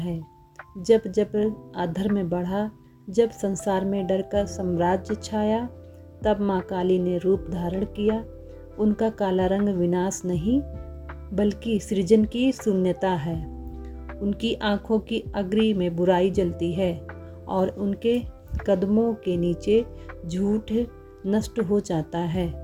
जब जब अधर्म बढ़ा, जब संसार में डर का साम्राज्य छाया, तब माँ काली ने रूप धारण किया। उनका काला रंग विनाश नहीं बल्कि सृजन की शून्यता है। उनकी आँखों की अग्नि में बुराई जलती है और उनके कदमों के नीचे झूठ नष्ट हो जाता है।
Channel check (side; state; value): both; identical; correlation 1.00